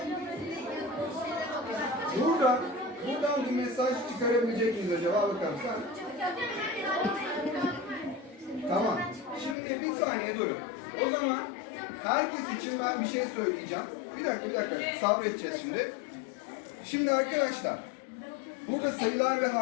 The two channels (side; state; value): right; drops out; at 9.6 s